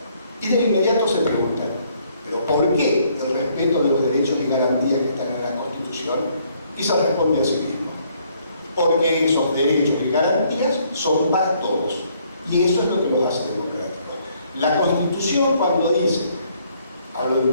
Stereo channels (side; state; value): both; inverted; correlation -0.66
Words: Y de inmediato se preguntan, ¿pero por qué el respeto de los derechos y garantías que están en la Constitución? Y se responde a sí mismo, porque esos derechos y garantías son para todos, y eso es lo que los hace democráticos. La Constitución, cuando dice, hablo de